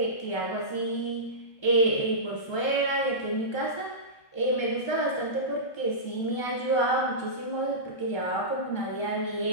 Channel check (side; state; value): right; late; 1.3 ms